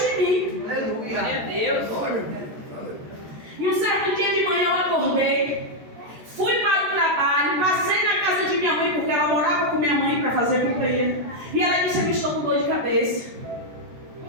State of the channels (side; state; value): left; late; 14 ms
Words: em mim. Aleluia. Glória a Deus. Glória. E um certo dia de manhã eu acordei, fui para o trabalho, passei na casa de minha mãe, porque ela morava com minha mãe para fazer companhia. E ela disse, eu estou com dor de cabeça.